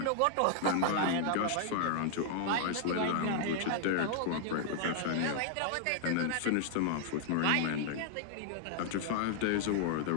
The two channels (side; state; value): both; different; correlation -0.01